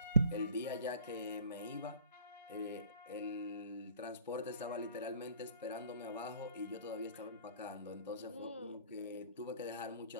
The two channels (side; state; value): both; inverted; correlation -0.51